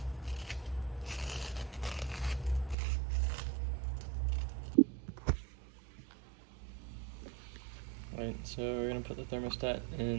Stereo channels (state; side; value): drops out; left; at 2.8 s